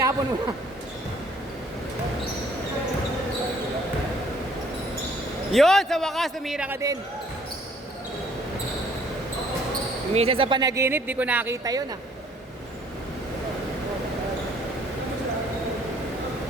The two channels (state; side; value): normal; both; correlation 0.60